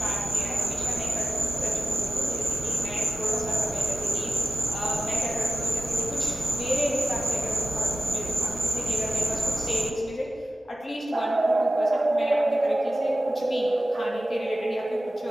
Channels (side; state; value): both; normal; correlation 0.95